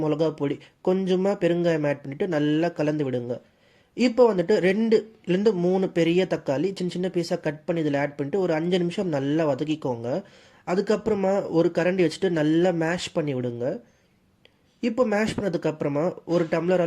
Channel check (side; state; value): both; identical; correlation 1.00